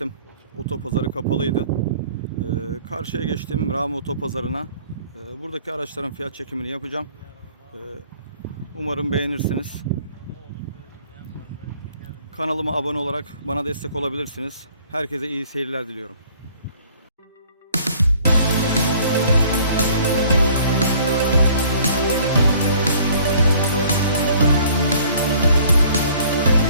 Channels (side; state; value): both; inverted; correlation -0.55